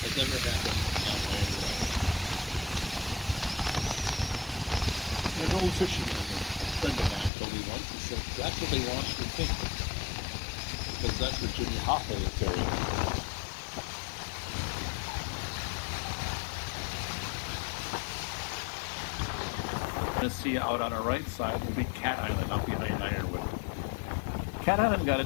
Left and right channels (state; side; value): drops out; right; at 7.3 s